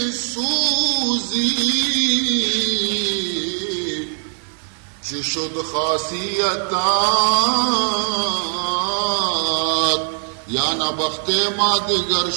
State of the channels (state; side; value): silent; left; digital silence